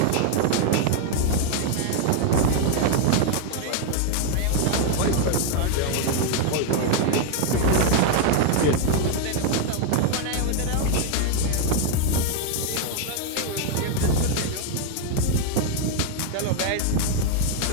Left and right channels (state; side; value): different; both; correlation 0.00